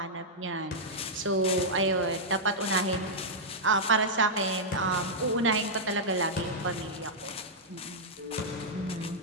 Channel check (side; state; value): both; normal; correlation -0.07